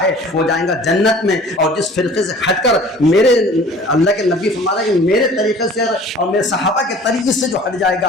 ہے وہ جائیں گا جنت میں، اور جس فرقے سے ہٹ کر میرے اللہ کے نبی فرما رہے ہیں کہ میرے طریقے سے اور میرے صحابہ کے طریقے سے جو ہٹ جائے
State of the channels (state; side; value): normal; both; correlation 0.47